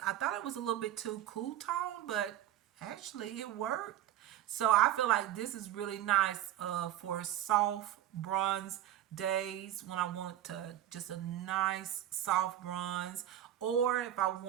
I thought it was a little bit too cool tone, but actually it worked. So I feel like this is really nice for soft bronze days when I want to just a nice soft bronze, or if I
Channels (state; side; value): quieter; left; 12.5 dB